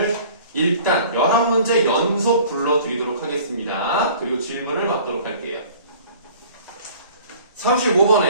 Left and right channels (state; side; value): inverted; both; correlation -0.49